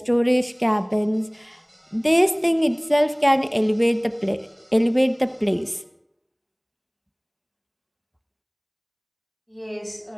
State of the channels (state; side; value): identical; both; correlation 1.00